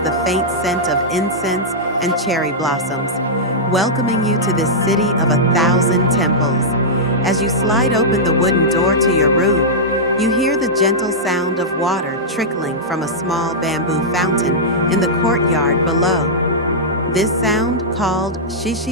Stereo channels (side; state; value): both; normal; correlation -0.10